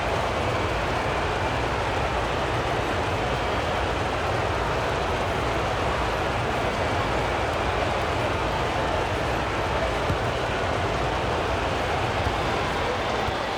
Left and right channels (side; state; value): both; identical; correlation 1.00